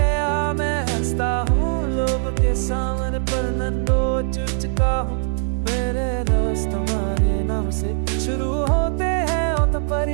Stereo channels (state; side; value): silent; left; digital silence